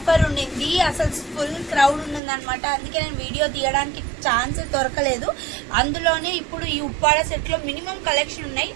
ఉండింది. అసలు ఫుల్ క్రౌడ్ ఉంది అనమాట. అందుకే నేను వీడియో తీయడానికి ఛాన్స్ దొరకలేదు. అందులోనే ఇప్పుడు ఈ ఉప్పాడ సెట్ లో మినిమం కలెక్షన్ ఉన్నాయి.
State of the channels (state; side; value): drops out; left; at 2.2 s